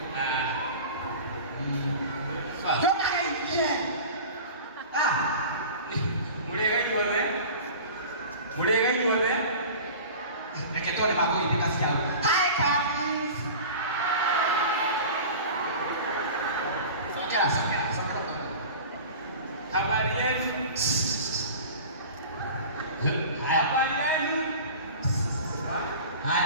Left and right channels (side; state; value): both; inverted; correlation -0.37